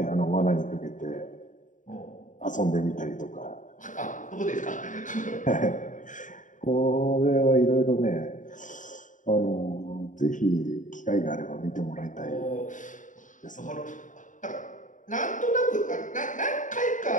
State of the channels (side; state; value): right; late; 0.37 ms